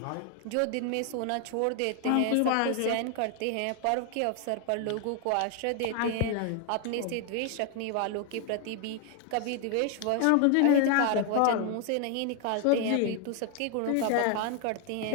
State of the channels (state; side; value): different; both; correlation 0.00